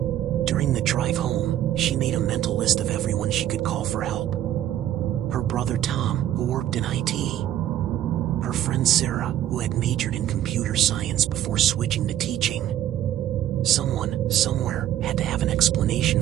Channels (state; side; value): quieter; left; 12.0 dB